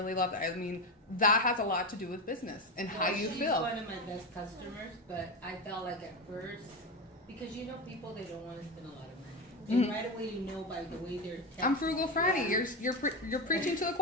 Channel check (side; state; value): both; normal; correlation 0.16